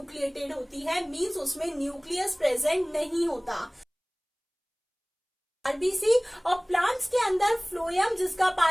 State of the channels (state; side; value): identical; both; correlation 1.00